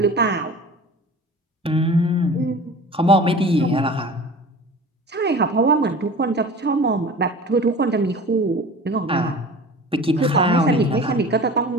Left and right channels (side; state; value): both; normal; correlation 0.39